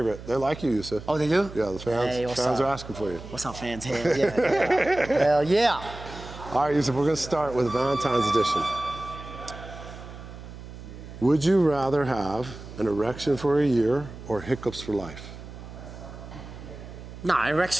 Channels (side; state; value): right; noise; hum, 14 dB below the sound